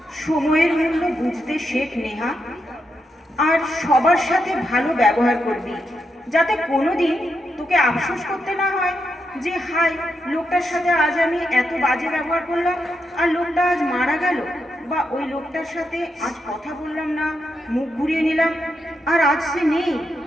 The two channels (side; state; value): both; normal; correlation 0.83